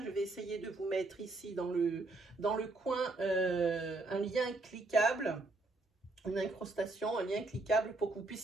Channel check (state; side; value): quieter; left; 3.1 dB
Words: je vais essayer de vous mettre ici dans le coin un lien cliquable, une incrustation, un lien cliquable pour que vous